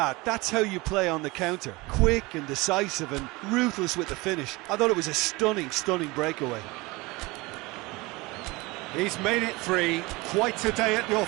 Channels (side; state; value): left; quieter; 23.1 dB